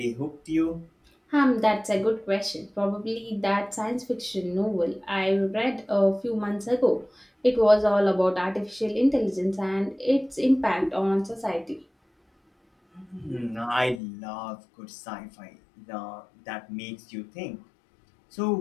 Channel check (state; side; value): drops out; right; at 14.0 s